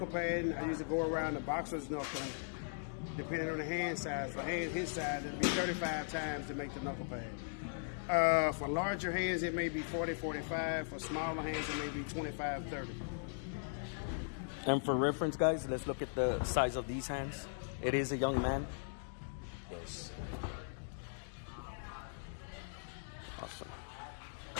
pad, I usually go around the boxer's knuckle, depending on the hand size. For his size, it'll be 35 times to make the knuckle pad. For larger hands, it may be 40, 45. For smaller hands, it may be 25, 30. And for reference, guys, let's look at the size of these hands. It is a young man. Yes. Awesome.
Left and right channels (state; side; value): silent; right; digital silence